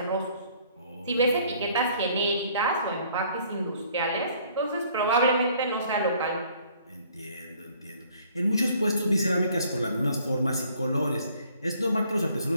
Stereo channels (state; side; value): inverted; both; correlation -0.60